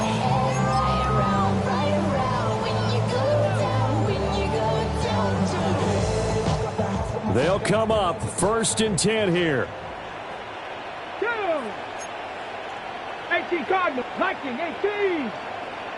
They'll come up 1st and 10 here. 18 Cardinals, 19, 18.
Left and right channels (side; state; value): both; identical; correlation 1.00